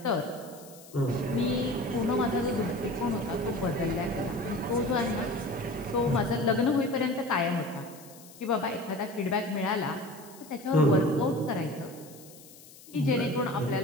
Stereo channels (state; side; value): noise; left; hiss, 20 dB below the sound